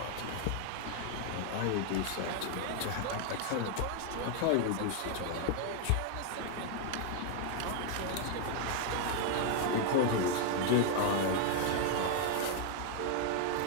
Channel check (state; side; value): different; both; correlation 0.00